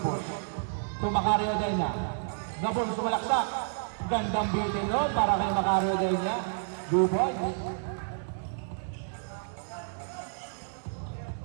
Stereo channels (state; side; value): silent; left; digital silence